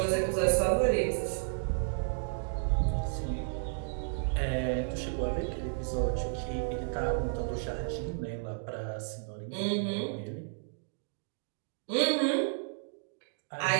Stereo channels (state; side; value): silent; left; digital silence